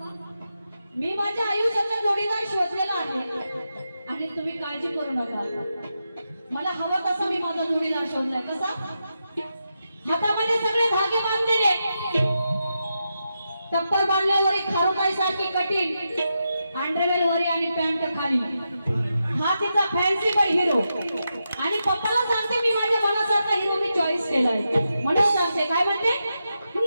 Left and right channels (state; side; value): inverted; both; correlation -0.87